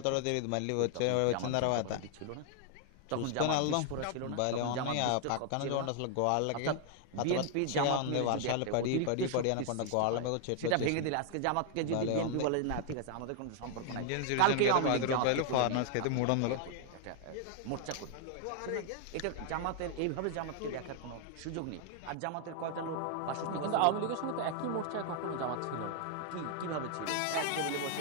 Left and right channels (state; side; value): different; both; correlation 0.00